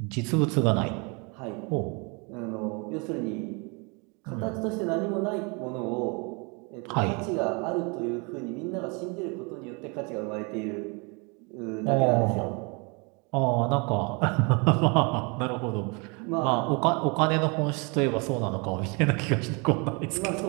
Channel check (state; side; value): quieter; left; 31.6 dB